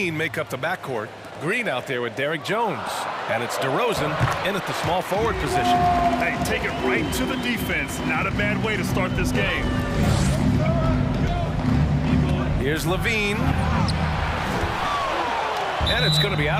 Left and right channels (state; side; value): identical; both; correlation 1.00